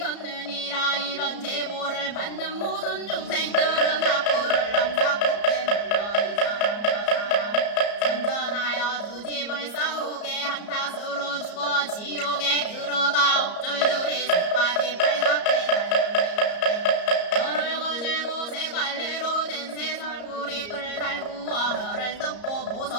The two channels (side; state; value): right; late; 34 ms